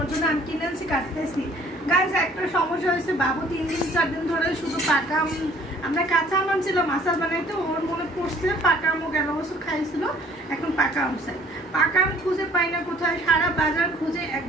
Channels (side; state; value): both; normal; correlation 0.56